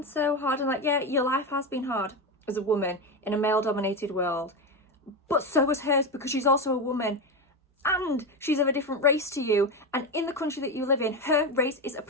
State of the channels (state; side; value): normal; both; correlation 0.15